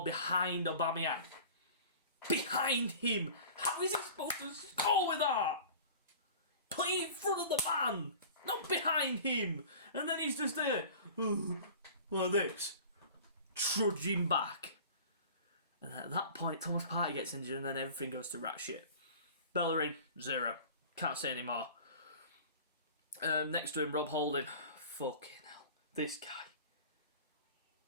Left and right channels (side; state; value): both; inverted; correlation -0.41